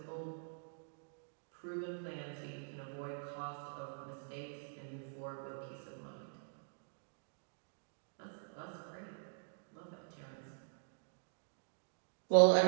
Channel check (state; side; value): silent; left; digital silence